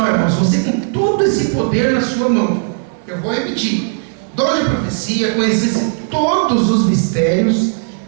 irmãos, você com todo esse poder na sua mão. Eu vou repetir: dom de profecia, conhecesse todos os mistérios,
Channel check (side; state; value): left; silent; digital silence